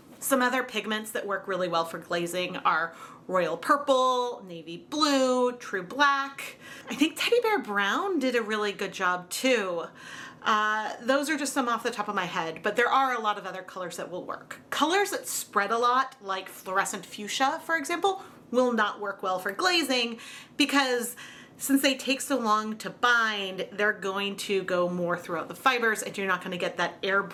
Some other pigments that work really well for glazing are Royal Purple, Navy Blue, True Black. I think Teddy Bear Brown did a really good job too. Those are just some off the top of my head, but there are a lot of other colors that will work. Colors that spread a lot, like fluorescent fuchsia, for example, will not work well for glazing because since they take so long to bind, they're going to go more throughout the fibers and you're not going to get that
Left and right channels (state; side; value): identical; both; correlation 1.00